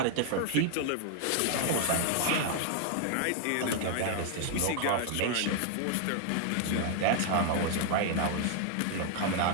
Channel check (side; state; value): both; different; correlation 0.00